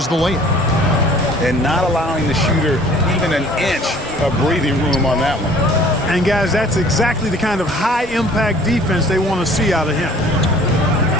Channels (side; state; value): both; normal; correlation 0.52